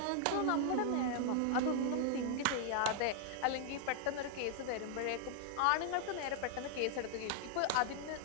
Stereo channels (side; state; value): both; different; correlation 0.00